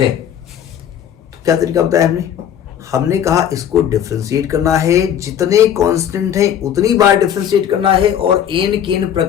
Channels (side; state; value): right; quieter; 9.5 dB